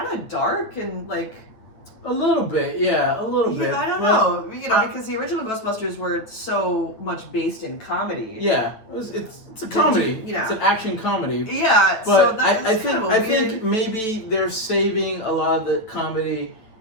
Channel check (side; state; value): right; late; 9.0 ms